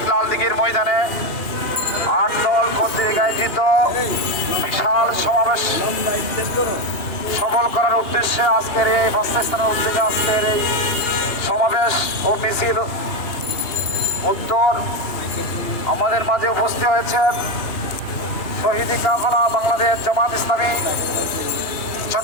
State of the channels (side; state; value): right; late; 2.8 ms